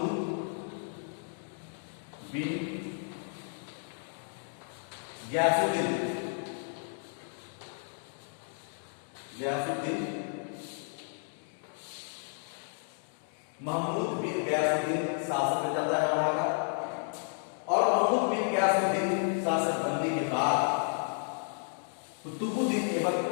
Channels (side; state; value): right; silent; 56 dB below the other